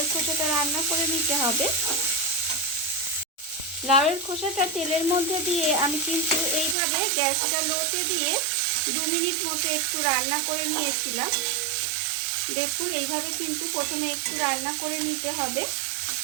খোসাটা রান্না করে নিতে হবে। লাউয়ের খোসাটা তেলের মধ্যে দিয়ে আমি কিন্তু এইভাবে গ্যাসটা লোতে দিয়ে 2 মিনিট মতো একটু রান্না করে নিয়েছিলাম। দেখুন এইভাবে কিন্তু প্রথমে একটু রান্না করে নিতে হবে।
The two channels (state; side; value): drops out; left; at 6.8 s